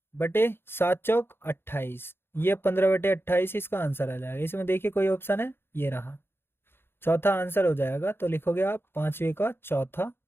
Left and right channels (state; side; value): late; right; 0.11 ms